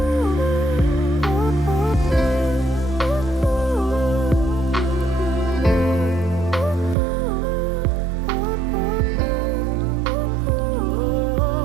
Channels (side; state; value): left; drops out; at 7.0 s